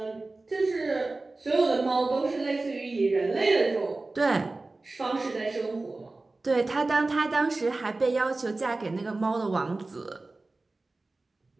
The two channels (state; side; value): quieter; left; 3.3 dB